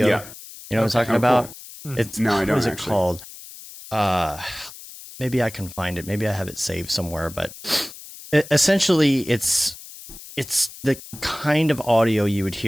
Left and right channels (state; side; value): noise; left; hiss, 16 dB below the sound